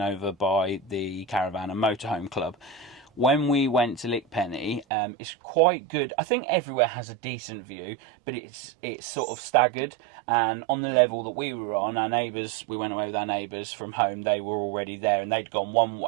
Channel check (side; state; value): left; drops out; at 4.9 s